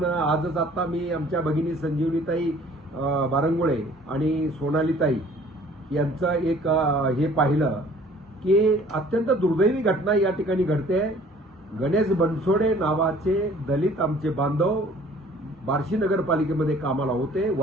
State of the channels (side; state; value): both; normal; correlation 0.53